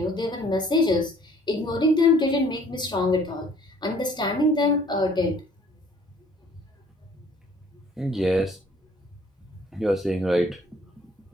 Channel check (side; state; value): both; normal; correlation 0.57